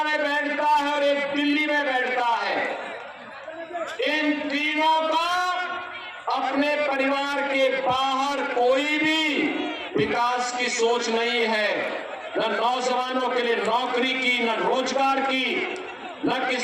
में बैठता है और एक दिल्ली में बैठता है। इन तीनों का अपने परिवार के बाहर कोई भी विकास की सोच नहीं है। न नौजवानों के लिए नौकरी की, न रोजगार की, न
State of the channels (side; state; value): both; identical; correlation 1.00